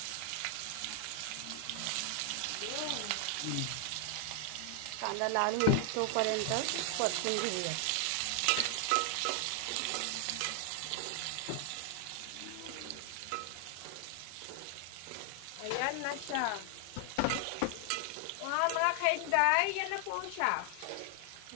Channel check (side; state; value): both; different; correlation 0.00